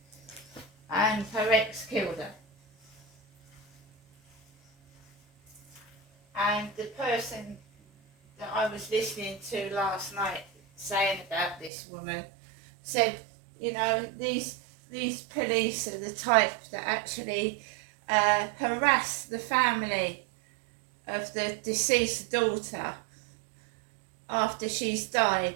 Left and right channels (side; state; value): left; drops out; at 11.7 s